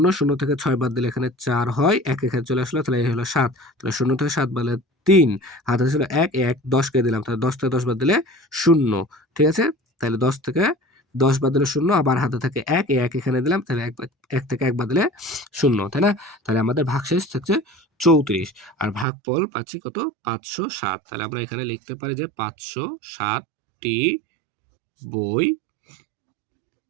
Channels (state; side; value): drops out; left; at 19.1 s